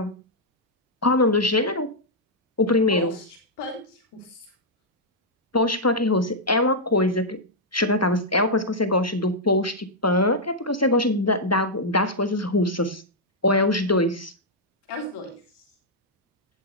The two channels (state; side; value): normal; both; correlation -0.05